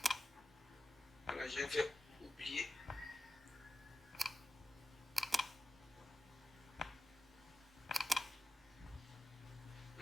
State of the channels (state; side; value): normal; both; correlation 0.94